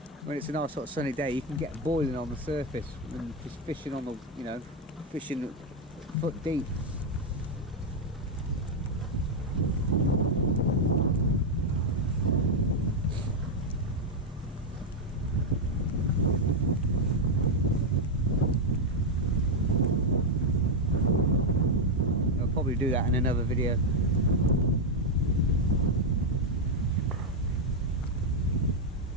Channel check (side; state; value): both; normal; correlation 0.02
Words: When it's a nice hot sunny day, you can get boiling on the surface and just fishing on the, you know, fishing foot deep. Probably do that in another video.